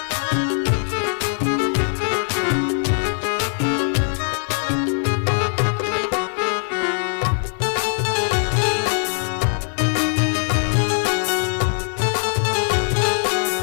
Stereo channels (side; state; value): right; silent; digital silence